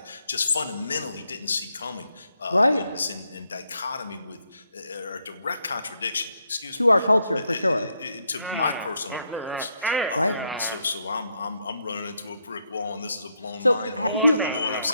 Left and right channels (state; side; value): inverted; both; correlation -0.78